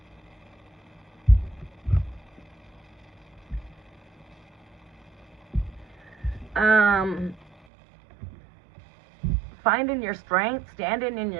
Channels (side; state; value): left; drops out; at 7.6 s